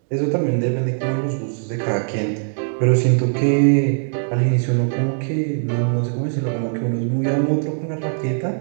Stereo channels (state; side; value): silent; left; 65 dB below the other